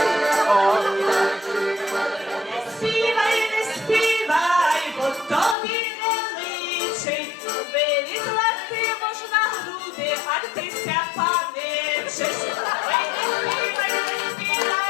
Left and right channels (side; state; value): right; drops out; at 5.6 s